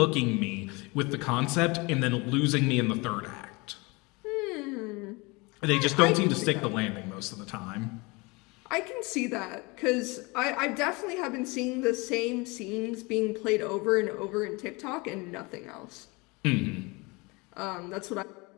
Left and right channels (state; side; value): quieter; right; 26.2 dB